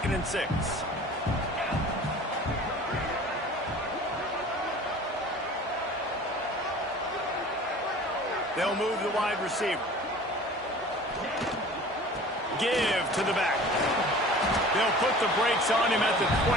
and 6. They'll move the wide receiver. Give to the back. They'll put the brakes on him at the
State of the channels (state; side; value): normal; both; correlation 0.43